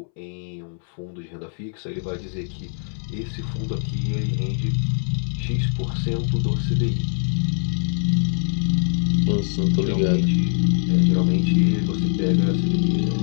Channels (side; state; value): right; silent; 64 dB below the other